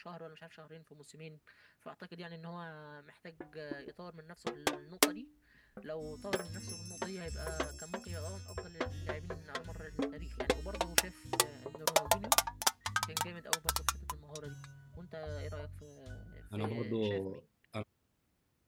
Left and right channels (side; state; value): both; identical; correlation 1.00